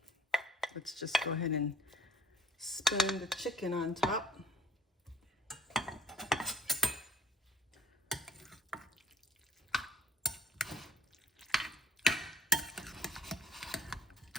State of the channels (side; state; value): both; normal; correlation 0.55